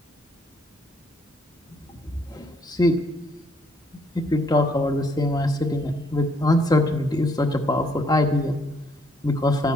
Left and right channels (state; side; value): normal; both; correlation 0.68